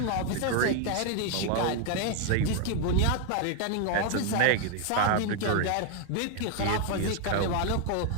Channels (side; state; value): both; different; correlation 0.01